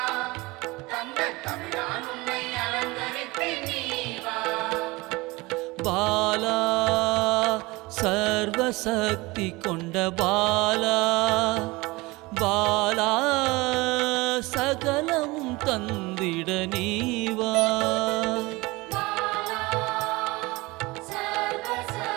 பாலா சர்வசக்தி கொண்ட பாலா பாலா சகலமும் தந்திட நீவா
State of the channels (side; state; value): left; quieter; 22.7 dB